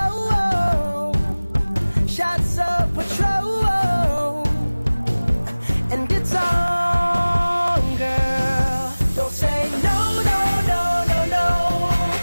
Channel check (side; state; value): both; inverted; correlation -1.00